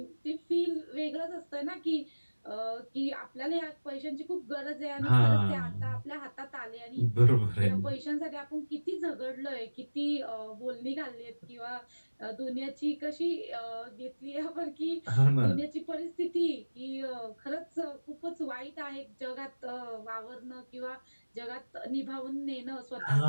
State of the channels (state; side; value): inverted; both; correlation -1.00